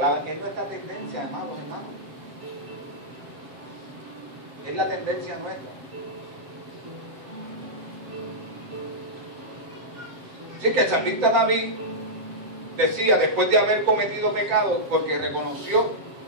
Es nuestra tendencia, amados hermanos. Es la tendencia nuestra. Así que el salmista David decía, después de haber cometido pecado, porque reconoció,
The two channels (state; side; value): late; left; 7.8 ms